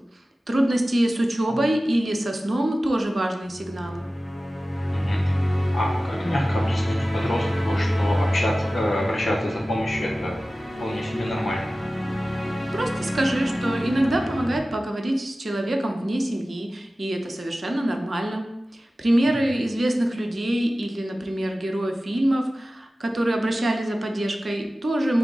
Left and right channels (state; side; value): normal; both; correlation 0.96